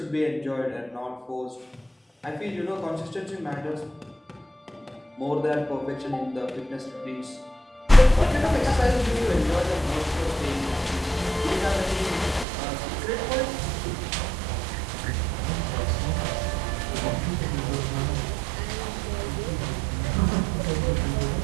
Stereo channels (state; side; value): drops out; left; at 12.5 s